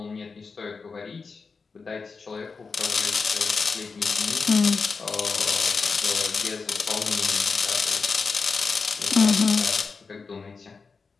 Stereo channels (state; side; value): quieter; right; 4.8 dB